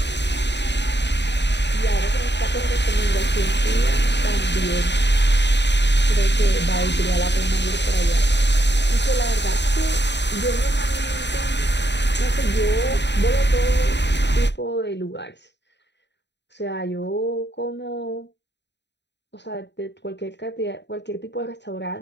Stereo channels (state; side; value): late; right; 0.51 ms